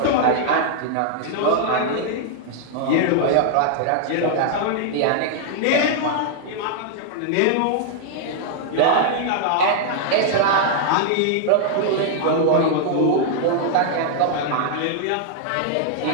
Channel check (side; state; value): both; different; correlation -0.01